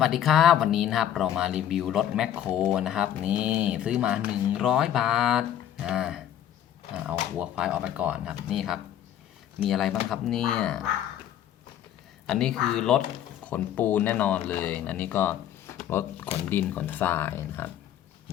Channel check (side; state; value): right; quieter; 10.7 dB